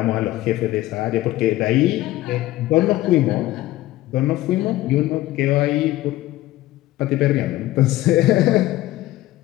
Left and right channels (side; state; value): right; quieter; 16.3 dB